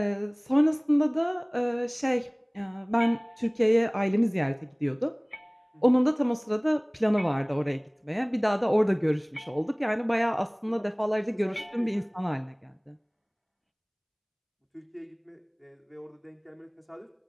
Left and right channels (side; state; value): both; identical; correlation 1.00